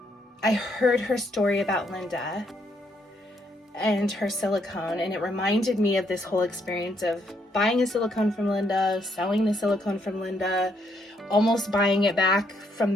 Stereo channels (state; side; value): normal; both; correlation 0.73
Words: I heard her story about Linda and her silicone, and it reminded me of this whole experience of buying a silicone from Linda, selling the silicone from Linda, almost buying it back